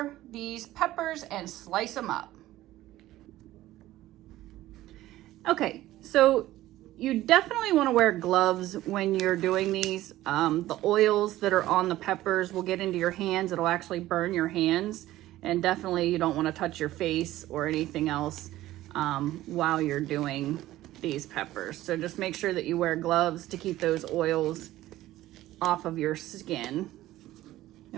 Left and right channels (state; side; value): quieter; left; 15.4 dB